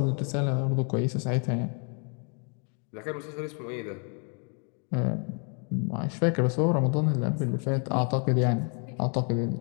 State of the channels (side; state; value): right; quieter; 39.9 dB